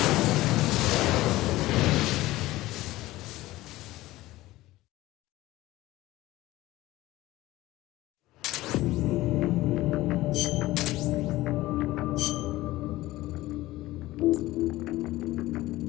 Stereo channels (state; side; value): quieter; right; 17.6 dB